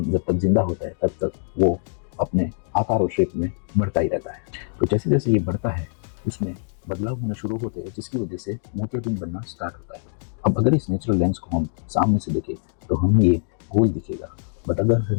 जब तक जिंदा होता है तब तक वो अपने आकार और शेप में बढ़ता ही रहता है। तो जैसे जैसे ये बढ़ता है उसमें बदलाव होना शुरू होते हैं, जिसकी वजह से मोतियाबिंद बनना स्टार्ट होता है। अब अगर इस नेचुरल लेंस को हम सामने से देखें तो हमें ये गोल दिखेगा, बट अगर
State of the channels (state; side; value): silent; right; digital silence